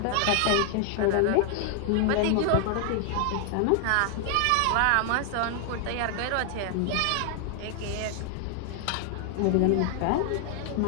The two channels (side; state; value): both; different; correlation 0.00